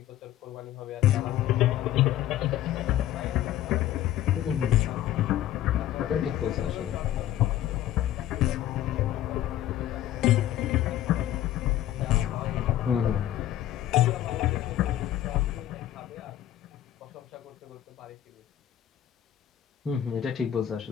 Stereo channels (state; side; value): quieter; right; 12.5 dB